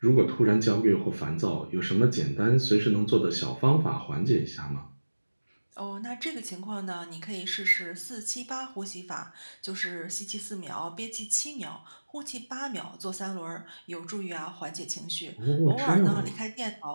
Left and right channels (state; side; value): inverted; both; correlation -1.00